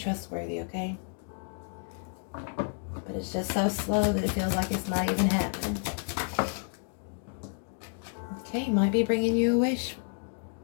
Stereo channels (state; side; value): silent; right; 56 dB below the other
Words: okay? But it's just so slow that it feels like it's not even happening. Okay, might be bringing you a wish.